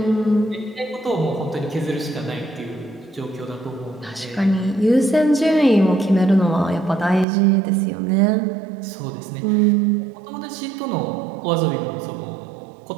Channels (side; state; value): left; drops out; at 7.2 s